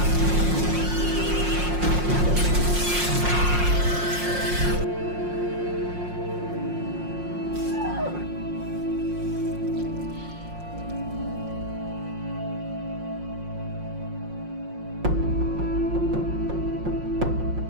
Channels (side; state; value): left; late; 5.6 ms